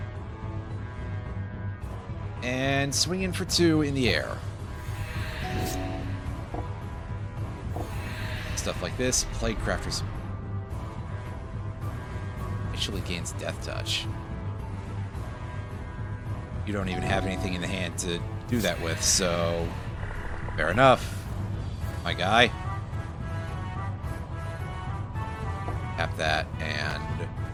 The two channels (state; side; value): identical; both; correlation 1.00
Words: And swing in for 2 in the air. Stuff like this. Plague Crafter's actually gains Death Touch. You don't even have anything in the hand to do that with, so fair enough, my guy. Tap that and